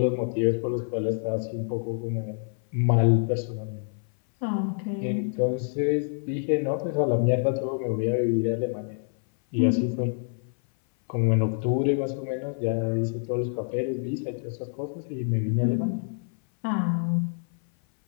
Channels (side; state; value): right; silent; 58 dB below the other